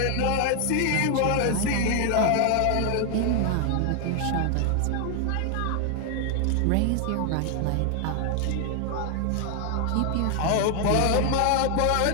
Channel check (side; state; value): both; different; correlation 0.00